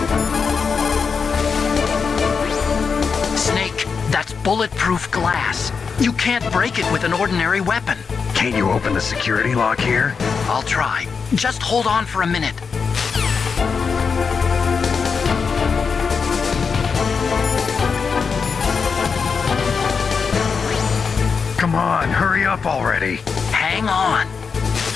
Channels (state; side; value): quieter; right; 5.6 dB